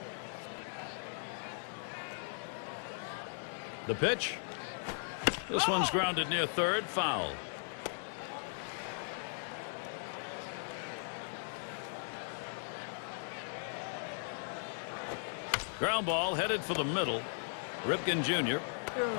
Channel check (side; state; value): right; silent; 53 dB below the other